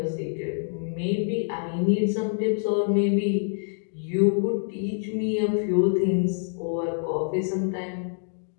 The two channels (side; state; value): right; silent; digital silence